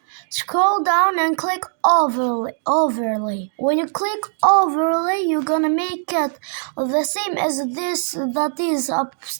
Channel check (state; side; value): silent; left; digital silence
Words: scroll down and click overlay. When you click overlay, you're gonna make it the same as this that is